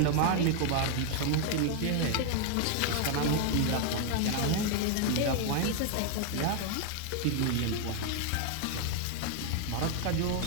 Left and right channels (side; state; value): both; different; correlation 0.00